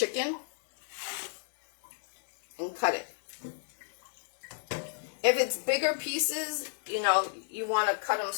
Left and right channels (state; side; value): silent; right; digital silence